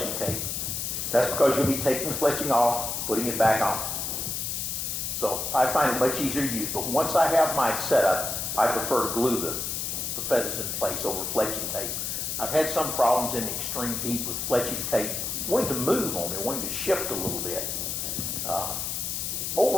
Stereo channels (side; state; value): left; noise; hiss, 2 dB below the sound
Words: tape. That's because you'll be taking the fletching off, putting it back on. So I find it much easier to use, but once I have my setup, I prefer to glue the feathers in place over fletching tape. I've had some problems in extreme heat with fletching tape wanting to move on me, wanting to shift a little bit.